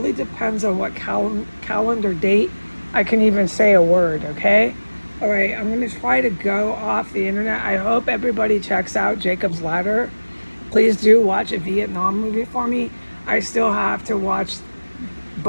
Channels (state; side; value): inverted; both; correlation -1.00